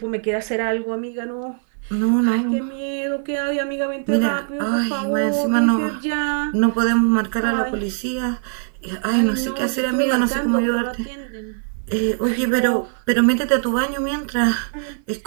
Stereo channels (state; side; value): silent; left; 57 dB below the other